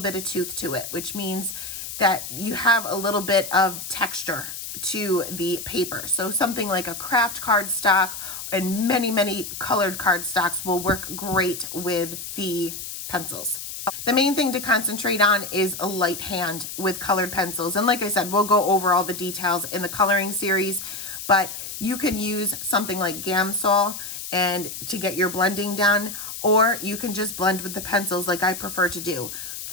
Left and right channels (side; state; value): left; noise; hiss, 8 dB below the sound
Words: bit of tooth to it, which means that you have a little bit of texture to the paper. So something like a craft cardstock and many, many colored cardstocks will work great with the pencils. The main thing to concentrate on is a light hand with colored pencils. And like I said, we'll go over all the details in the coloring series, but you can use something like Gamsol and to get your blending done, or you can just blend with the pencils like I prefer to do.